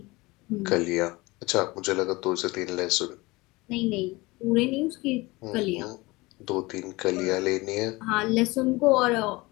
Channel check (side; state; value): right; quieter; 22.5 dB